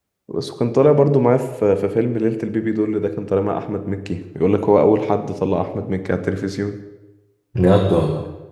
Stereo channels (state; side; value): identical; both; correlation 1.00